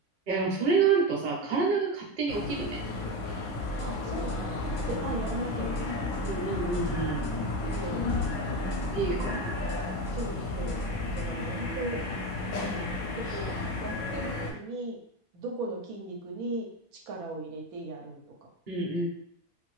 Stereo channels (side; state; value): both; normal; correlation 0.19